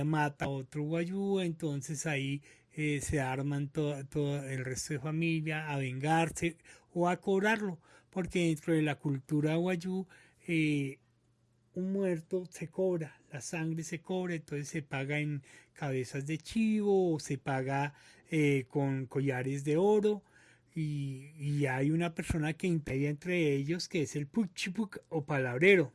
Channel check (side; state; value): both; identical; correlation 1.00